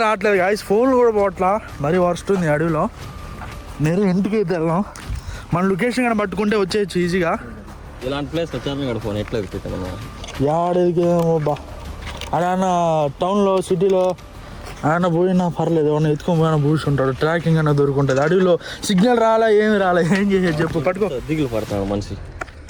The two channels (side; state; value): both; identical; correlation 1.00